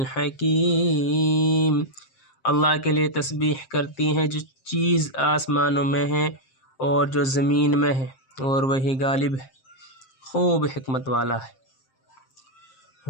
اللہ کے لیے تسبیح کرتی ہیں جو چیز آسمانوں میں ہے اور جو زمین میں ہے، اور وہی غالب ہے، خوب حکمت والا ہے۔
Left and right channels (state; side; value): late; right; 7.6 ms